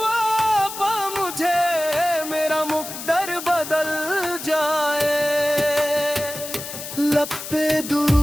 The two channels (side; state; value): left; noise; hiss, 9 dB below the sound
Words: पा मुझे, मेरा मुकद्दर बदल जाए। लब पे